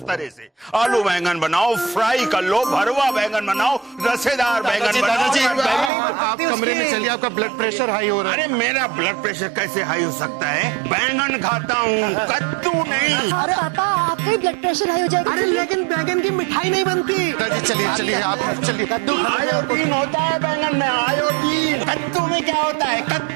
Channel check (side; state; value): left; drops out; at 5.9 s